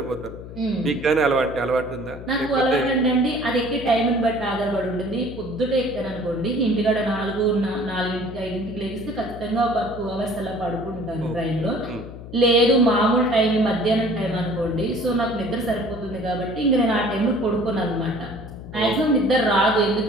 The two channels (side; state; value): left; noise; hum, 13 dB below the sound